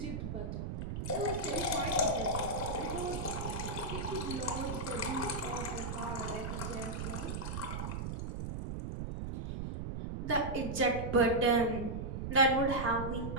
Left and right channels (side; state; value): right; noise; rumble, 4 dB below the sound